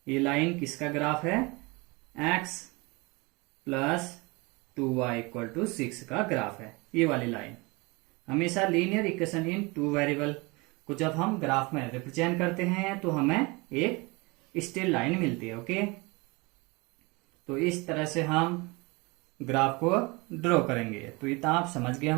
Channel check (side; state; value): left; quieter; 26.1 dB